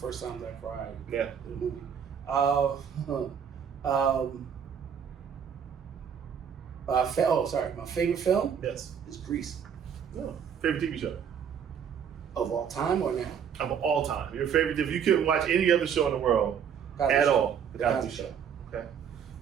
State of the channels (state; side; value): quieter; left; 7.8 dB